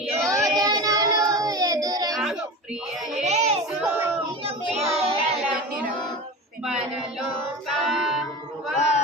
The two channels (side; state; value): both; normal; correlation 0.29